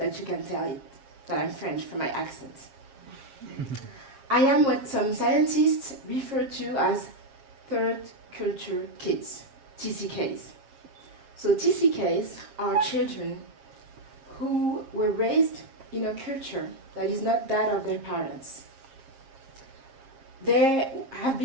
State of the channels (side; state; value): left; late; 7.4 ms